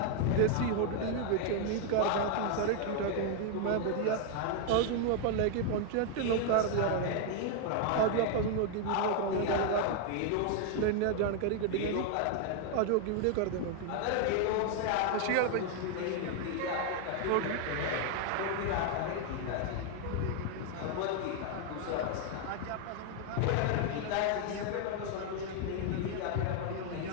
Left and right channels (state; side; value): different; both; correlation 0.00